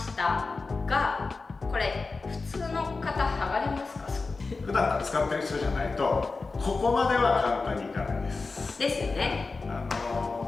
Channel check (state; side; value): quieter; right; 4.0 dB